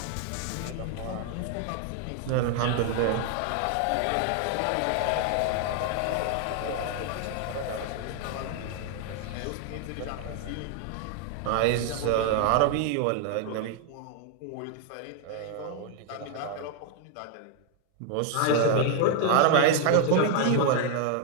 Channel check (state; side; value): different; both; correlation 0.00